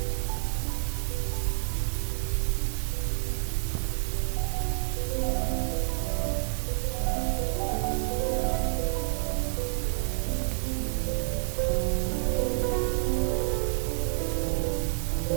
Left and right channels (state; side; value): silent; left; digital silence